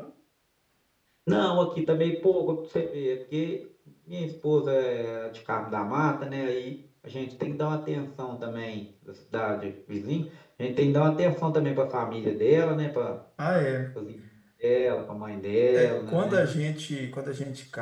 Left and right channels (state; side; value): identical; both; correlation 1.00